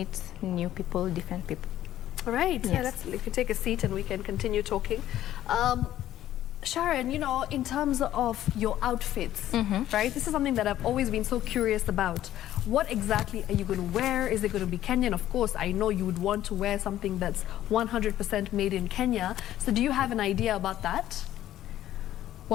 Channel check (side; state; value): right; quieter; 12.8 dB